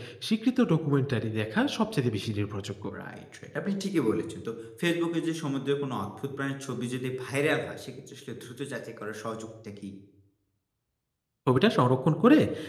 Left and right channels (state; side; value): identical; both; correlation 1.00